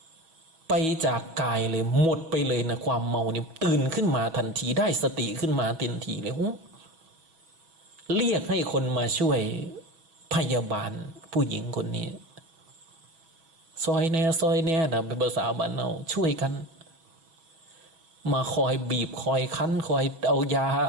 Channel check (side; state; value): left; late; 6.2 ms